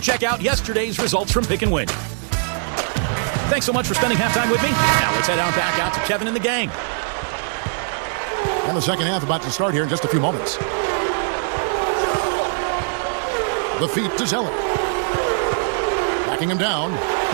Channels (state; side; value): silent; left; 58 dB below the other